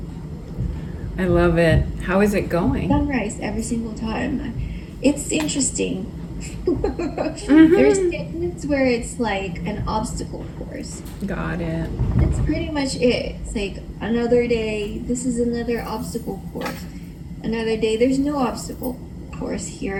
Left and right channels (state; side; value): identical; both; correlation 1.00